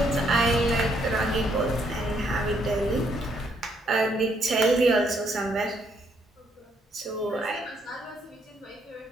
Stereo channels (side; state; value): both; normal; correlation 0.71